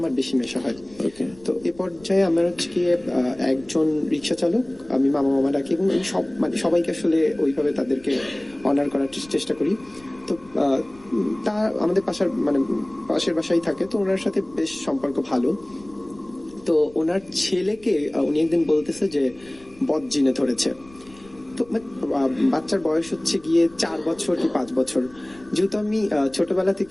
বেশি মেশা হয়। তো এ পর্যায়ে আমার হচ্ছে গিয়ে একজন রিক্সা চালক, আমি মামা ডাকি, এবং সব মানে সবাইকে আসলে ওইভাবে তাদেরকে অনার করার চেষ্টা করি। তো তা আমাদের পাশের বাসায় থাকে, তো ওনার সাথে বেশ সম্পর্ক ভালো। তো ওনার ছেলেকে উনি একদিন বলতেছে যে বদ জিনে ধরেছে। তো বাচ্চার বয়স হচ্ছে গিয়ে 4 বছর কি 5 বছর। যেহেতু আমি ছোটবেলা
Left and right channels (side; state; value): left; noise; rumble, 25 dB below the sound